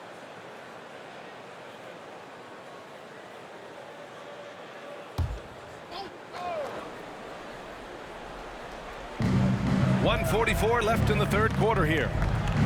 .144 left in the third quarter here.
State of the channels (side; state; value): both; identical; correlation 1.00